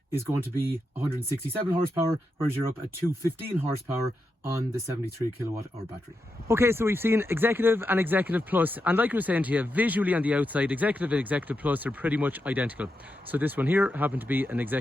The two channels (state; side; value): normal; both; correlation 0.86